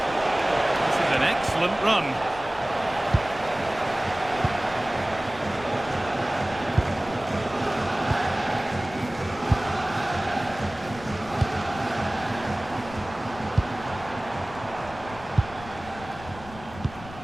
This is an excellent run.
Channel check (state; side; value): noise; left; rumble, 16 dB below the sound